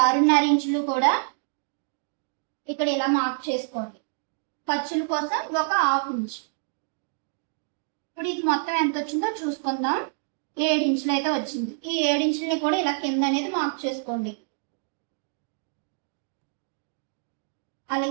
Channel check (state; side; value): silent; left; digital silence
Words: ఇంచులు కూడా ఇక్కడ ఇలా మార్క్ చేసుకోండి. ఖర్చుల కోసం ఒక 1/2 ఇంచ్. ఇప్పుడు ఇది మొత్తం ఎంత వచ్చిందో చూసుకుందాం. 7 ఇంచులు అయితే వచ్చింది. ఈ 7 ఇంచులని కూడా ఇలా కింద అనేది మార్క్ చేసుకోండి.